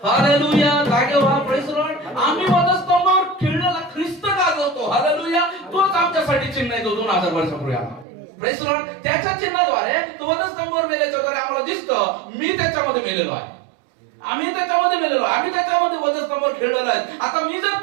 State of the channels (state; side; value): drops out; left; at 8.1 s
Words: हालेलुया. जागे व्हा, प्रेज द लॉर्ड. आम्ही वधस्तंभावर खेळलेला ख्रिस्त गाजवतो. हालेलुया. तोच आमच्यासाठी चिन्ह आहे, जो 2000 वर्षापूर्वी आला. Praise the Lord. त्याच्या चिन्हाद्वारे तो वधस्तंभावर मेल्याच्या द्वारे आम्हाला दिसतं मी त्याच्यामध्ये मेलेलो आहे, आम्ही त्याच्यामध्ये मेलेलो आहे, आम्ही त्याच्यामध्ये वधस्तंभावर खेळलेलो आहे. आता मी